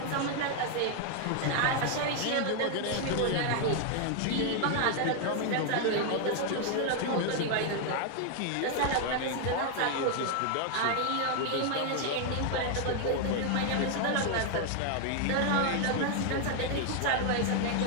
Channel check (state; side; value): different; both; correlation 0.00